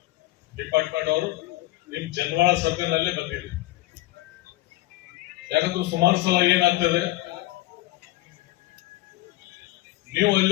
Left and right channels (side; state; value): right; quieter; 17.6 dB